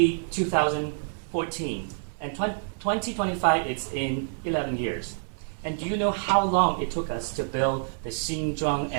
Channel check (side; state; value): left; silent; 60 dB below the other